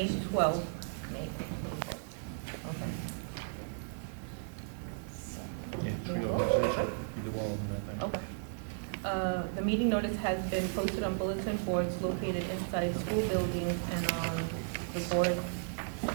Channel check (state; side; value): silent; left; digital silence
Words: 12th. May. Okay. Okay. The meeting notice has been posted on bulletin boards located inside school buildings and on the Board